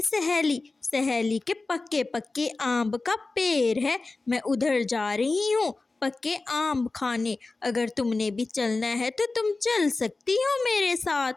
सहेली सहेली के पक्के पक्के आम का पेड़ है। मैं उधर जा रही हूँ पक्के आम खाने। अगर तुमने भी चलना है तो तुम चल सकती हो मेरे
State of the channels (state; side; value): quieter; right; 3.5 dB